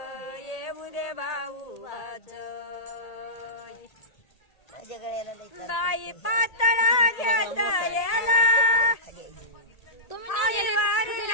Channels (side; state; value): right; late; 1.8 ms